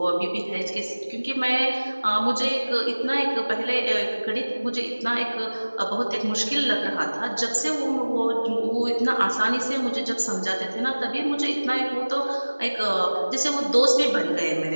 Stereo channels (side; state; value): both; inverted; correlation -1.00